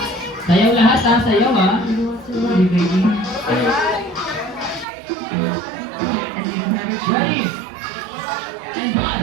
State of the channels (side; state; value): left; drops out; at 4.9 s